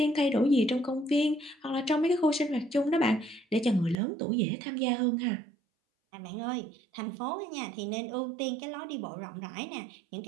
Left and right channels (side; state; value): left; drops out; at 4.0 s